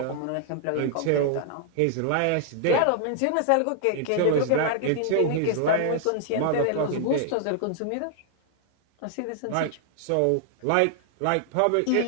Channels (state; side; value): different; both; correlation 0.00